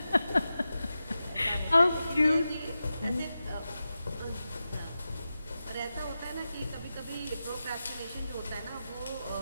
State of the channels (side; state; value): both; inverted; correlation -0.92